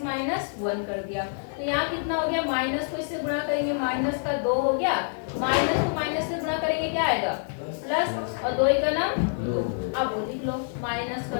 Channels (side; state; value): right; silent; digital silence